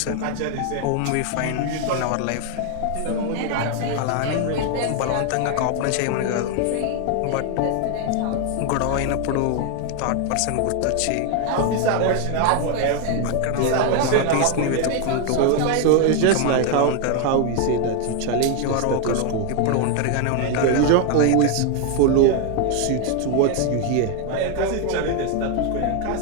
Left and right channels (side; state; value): both; different; correlation 0.01